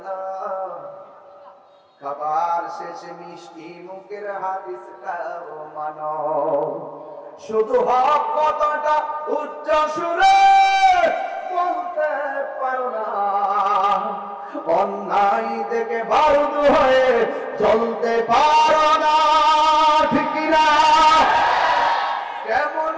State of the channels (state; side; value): identical; both; correlation 1.00